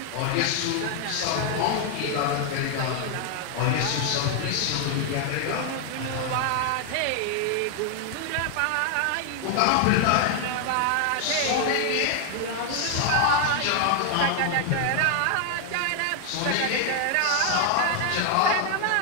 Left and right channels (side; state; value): both; different; correlation 0.00